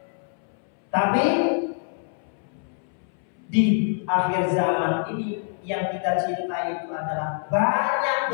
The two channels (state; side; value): silent; right; 62 dB below the other